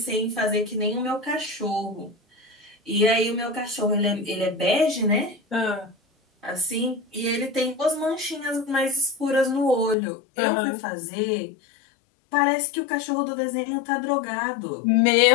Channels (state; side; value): drops out; right; at 10.0 s